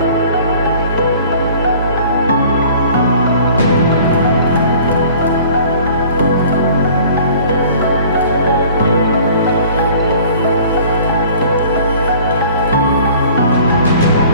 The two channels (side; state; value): both; inverted; correlation -0.50